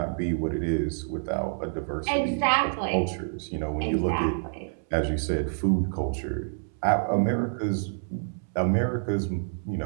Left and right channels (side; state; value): left; silent; 60 dB below the other